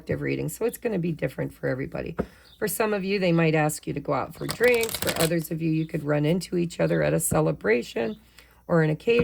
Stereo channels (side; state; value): both; identical; correlation 1.00